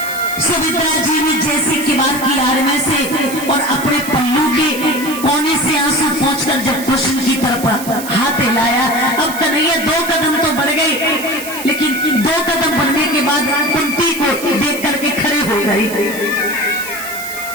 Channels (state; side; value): noise; right; hiss, 11 dB below the sound